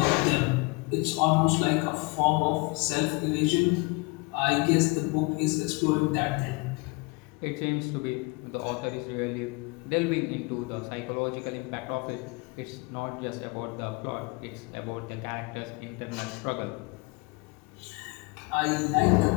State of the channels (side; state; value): right; quieter; 28.1 dB